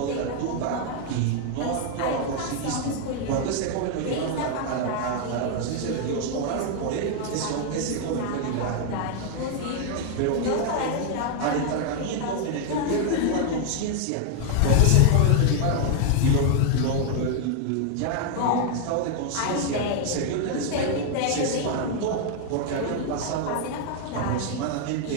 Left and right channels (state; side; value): different; both; correlation 0.00